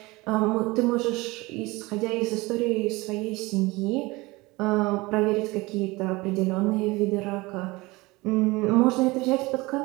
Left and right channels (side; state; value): left; quieter; 22.4 dB